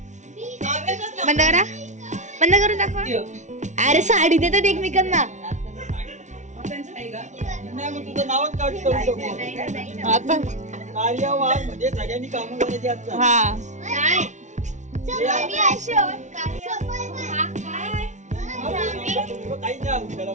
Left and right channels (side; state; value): left; late; 0.35 ms